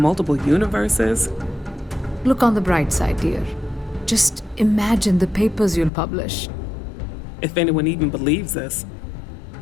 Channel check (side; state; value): right; drops out; at 5.9 s